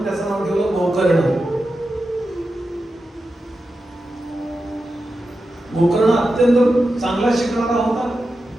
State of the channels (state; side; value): normal; both; correlation 0.90